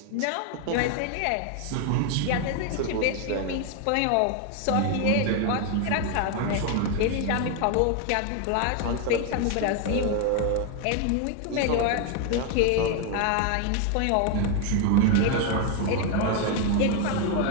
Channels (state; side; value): different; both; correlation 0.01